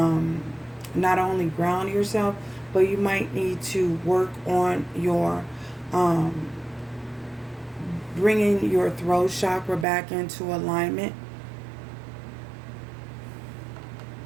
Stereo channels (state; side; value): drops out; left; at 9.9 s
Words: not only ground yourself, but you might need to work on your bringing your throat chakra back into alignment.